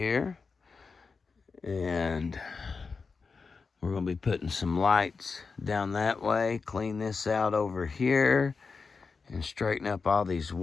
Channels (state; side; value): quieter; right; 4.8 dB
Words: And we're going to be putting some lights down that way. Clean this out over here. And straighten up all these